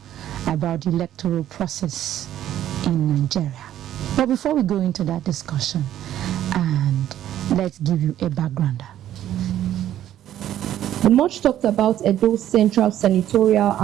about the electoral process in Nigeria. But before we go into that discussion, and let's give you a backgrounder. The much talked about Edo Central Senatorial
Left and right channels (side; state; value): left; quieter; 11.9 dB